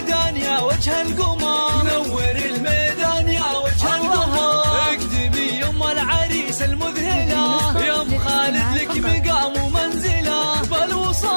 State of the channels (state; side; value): inverted; both; correlation -1.00